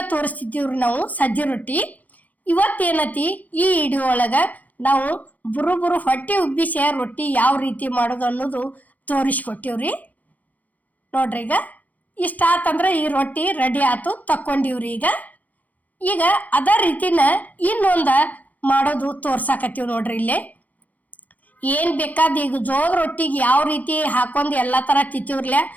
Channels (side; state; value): right; late; 0.076 ms